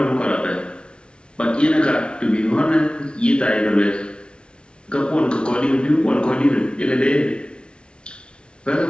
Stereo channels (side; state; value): right; late; 0.057 ms